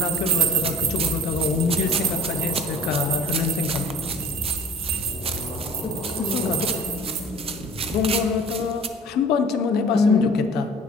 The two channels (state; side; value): normal; both; correlation 0.48